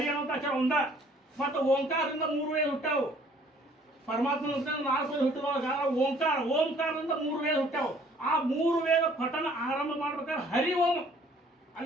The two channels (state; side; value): normal; both; correlation 0.58